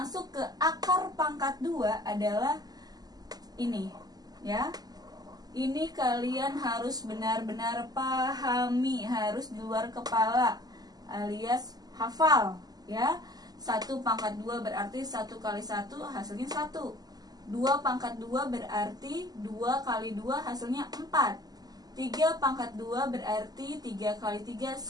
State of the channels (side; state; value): left; late; 0.19 ms